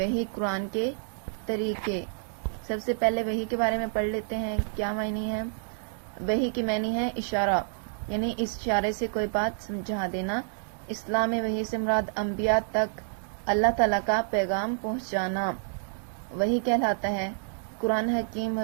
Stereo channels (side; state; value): left; silent; digital silence